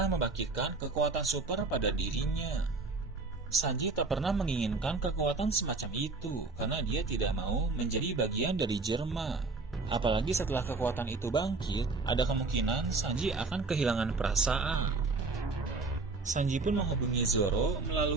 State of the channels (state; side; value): quieter; left; 3.8 dB